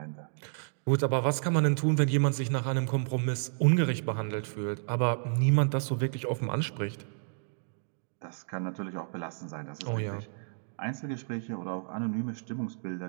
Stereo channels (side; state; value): left; silent; digital silence